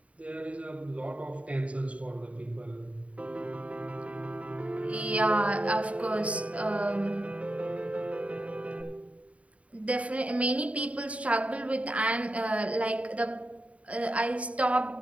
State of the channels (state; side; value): late; left; 0.066 ms